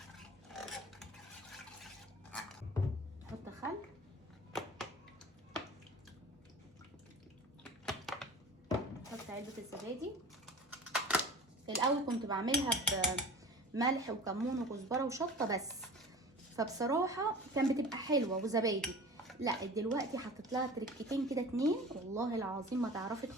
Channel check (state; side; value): normal; both; correlation 0.38